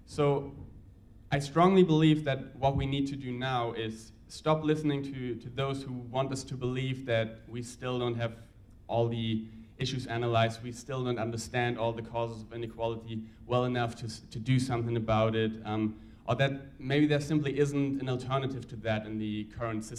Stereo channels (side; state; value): both; identical; correlation 1.00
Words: So I strongly believe that what we need to do now is stop listening to those who want us to believe that we still don't have all the issues analyzed, we still don't understand all the causes of inequality well enough to do something about it, or that maybe there simply isn't an alternative to that in the current